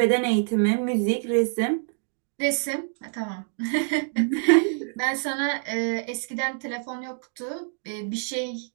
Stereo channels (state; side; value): silent; left; digital silence